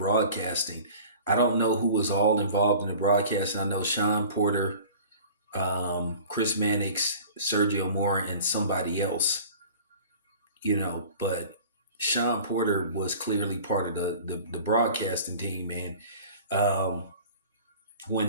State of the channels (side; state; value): both; inverted; correlation -0.43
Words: I don't know who was all involved in the broadcasting. I know Sean Porter, Chris Mannix, Sergio Mora, and somebody else, but Sean Porter was clearly part of the broadcasting team, man.